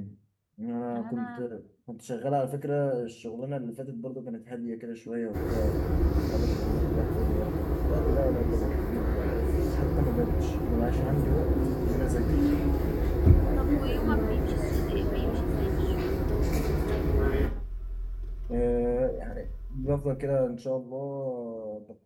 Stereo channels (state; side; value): identical; both; correlation 1.00